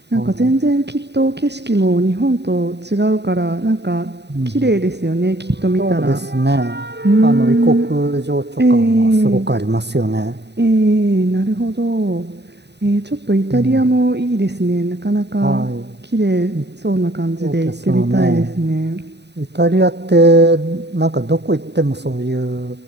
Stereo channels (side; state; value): left; late; 0.50 ms